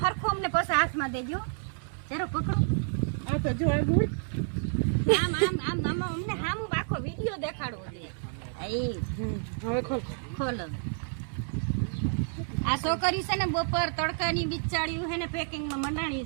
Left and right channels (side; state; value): left; silent; digital silence